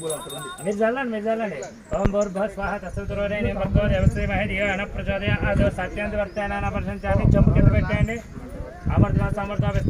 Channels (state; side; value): identical; both; correlation 1.00